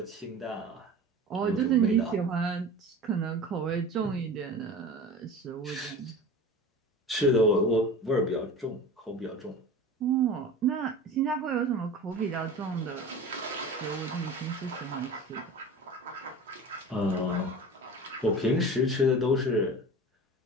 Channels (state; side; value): normal; both; correlation 0.35